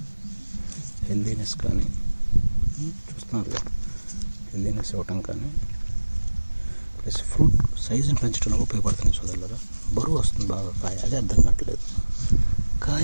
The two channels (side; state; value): both; inverted; correlation -1.00